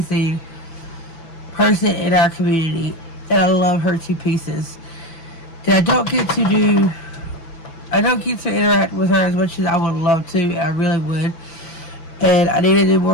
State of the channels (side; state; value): right; late; 6.0 ms